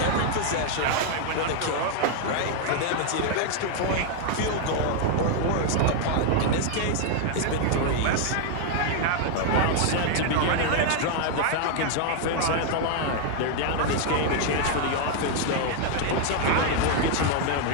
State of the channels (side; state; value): both; different; correlation 0.00